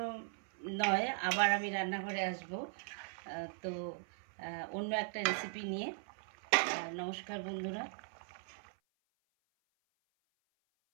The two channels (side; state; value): left; silent; 52 dB below the other